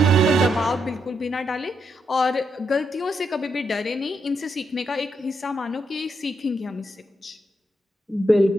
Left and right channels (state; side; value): normal; both; correlation 0.80